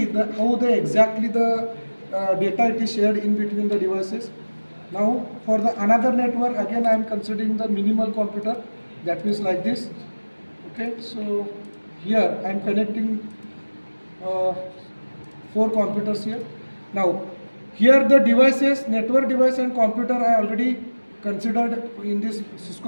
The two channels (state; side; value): inverted; both; correlation -1.00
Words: how exactly the data it is shared in between the devices. Now for the another network again I am considering the minimal computer, that means like this. Okay, so here I am connecting 4 computers here. Now here the devices, network device and computer I already considered in this